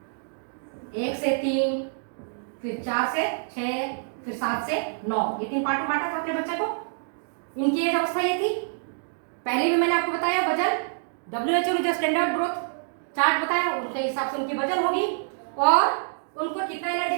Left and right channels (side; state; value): left; silent; digital silence